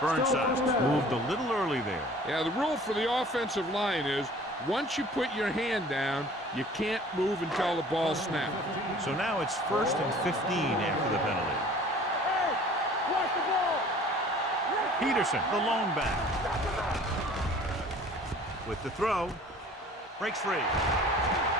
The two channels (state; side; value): normal; both; correlation 0.49